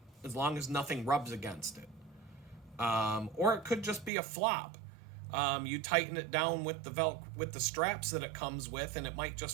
as long as nothing rubs against it. Or it could just be a flop. You tighten it down with the straps that it comes with, and it might just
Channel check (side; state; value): left; drops out; at 4.1 s